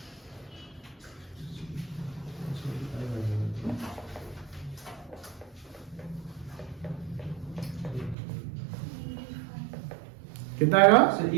कितना आएगा? सर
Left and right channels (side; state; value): left; drops out; at 8.2 s